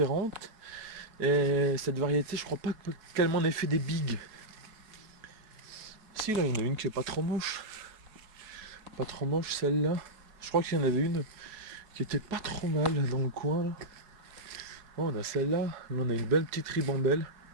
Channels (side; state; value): left; late; 4.7 ms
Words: Et cette variété, je crois pas qu'elle m'en ait fait des bigs. Si, là, il y en a une qui est pas trop moche. Pas trop moche, celle-là. Je crois qu'il y en avait une qui était pas trop mal dans le coin, là. Oh, on a celle-là. Là, on a une belle petite ribambelle.